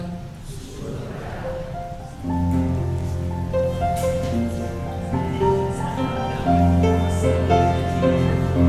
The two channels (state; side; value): identical; both; correlation 1.00